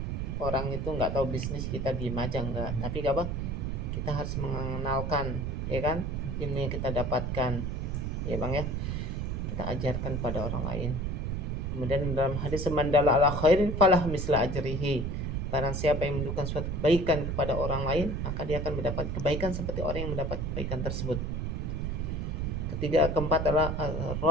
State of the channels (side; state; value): right; noise; rumble, 2 dB below the sound